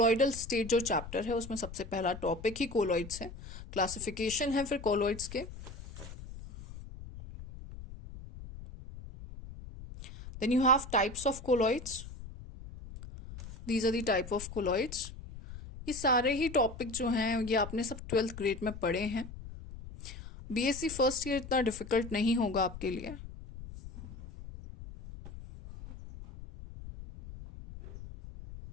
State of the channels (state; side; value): noise; left; rumble, 13 dB below the sound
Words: स्टेट जो चैप्टर है उसमें सबसे पहला टॉपिक ही कोलॉइड्स है. क्लासिफिकेशन है फिर कोलॉइड्स के. Then you have types of colloids. These are the type of colloids. ये सारे ही टॉपिक जो हैं ये आपने सब 12th ग्रेड में पढ़े हैं. बीएससी फर्स्ट ईयर इतना डिफिकल्ट नहीं होगा आपके लिए.